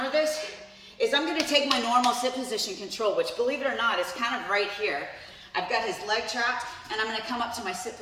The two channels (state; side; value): identical; both; correlation 1.00